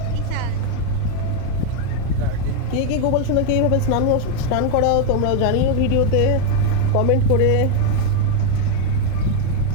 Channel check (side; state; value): both; different; correlation 0.01